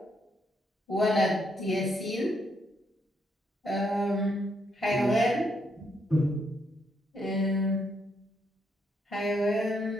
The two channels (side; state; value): both; normal; correlation 0.76